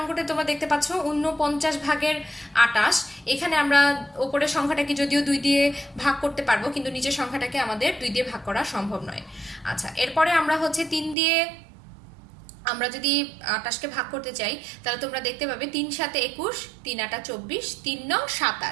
তোমরা দেখতে পাচ্ছ 49 ভাগের 28। এখানে আমরা উপরের সংখ্যাটাকে যদিও 2 দিয়ে ভাগ করতে পারবো, কিন্তু নিচের সংখ্যাটাকে আমাদের 2 দিয়ে ভাগ করা সম্ভব নয়। আচ্ছা, এরপরে আমরা হচ্ছে 3 দিয়ে আমরা যদি 28কে ভাগ করতে চাই, তাহলে তোমরা দেখতে পাবে 3 7 21, 3 8 24, 3 9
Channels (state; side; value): drops out; left; at 11.2 s